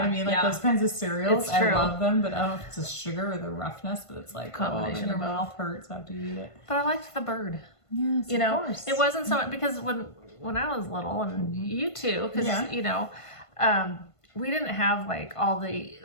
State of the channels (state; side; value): late; right; 1.5 ms